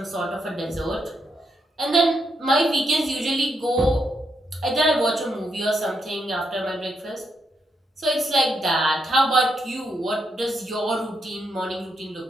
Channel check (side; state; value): both; normal; correlation 0.80